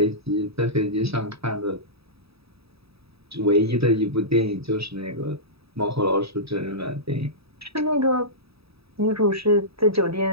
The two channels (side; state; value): left; late; 0.77 ms